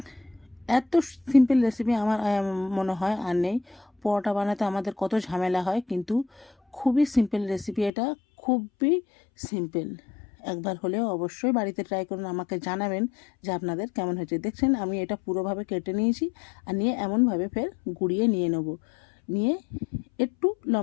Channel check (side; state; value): right; drops out; at 7.9 s